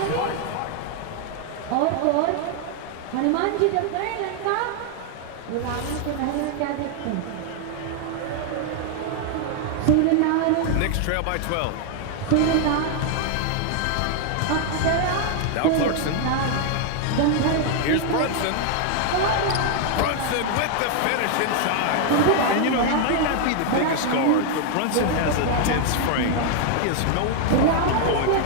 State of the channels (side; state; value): both; different; correlation 0.00